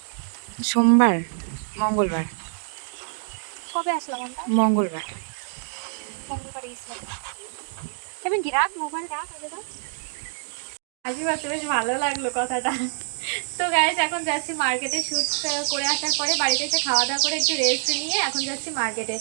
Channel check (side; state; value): left; silent; digital silence